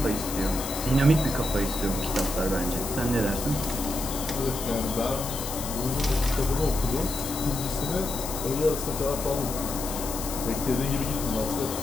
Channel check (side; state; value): left; noise; hiss, 7 dB below the sound